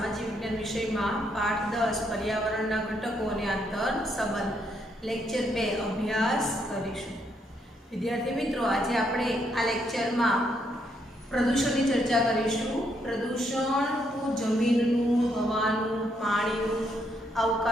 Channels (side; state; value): both; normal; correlation 0.75